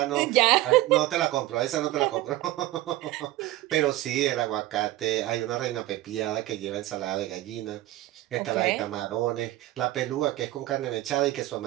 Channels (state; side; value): quieter; left; 16.4 dB